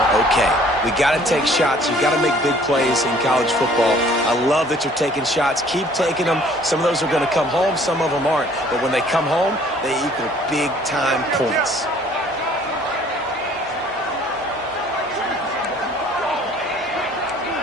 okay. We got to take shots. You got to make big plays in college football. I love that you're taking shots. Keep taking them. Some of those are going to come home. Some of them aren't. But when they come home, they equal big-time points.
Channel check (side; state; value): both; normal; correlation 0.56